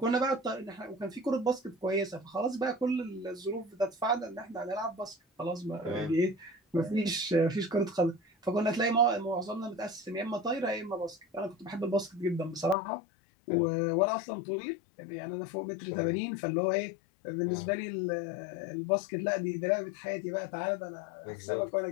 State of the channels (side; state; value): right; drops out; at 12.8 s